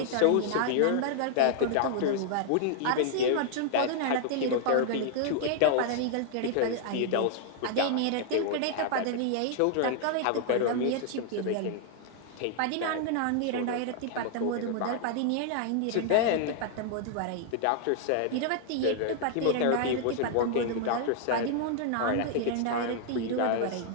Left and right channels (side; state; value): both; different; correlation 0.00